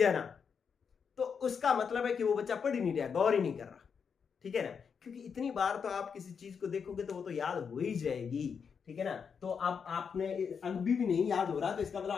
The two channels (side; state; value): right; quieter; 6.4 dB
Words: ना, तो उसका मतलब है कि वो बच्चा पढ़ ही नहीं रहा, गौर ही नहीं कर रहा। ठीक है ना, क्योंकि इतनी बार तो आप किसी चीज को देखोगे तो वो तो याद हो ही जाएगी। ठीक है ना, तो अब आपने अभी भी नहीं याद हो रहा, तो इसका